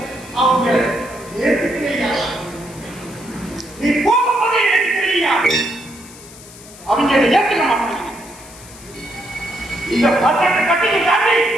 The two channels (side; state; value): left; noise; hiss, 19 dB below the sound